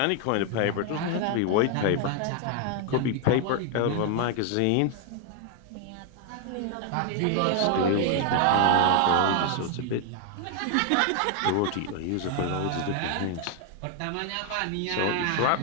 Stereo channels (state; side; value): different; both; correlation 0.00